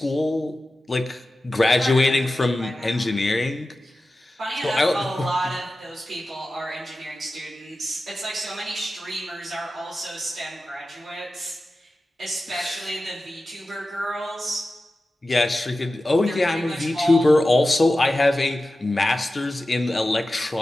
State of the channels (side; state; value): both; normal; correlation 0.94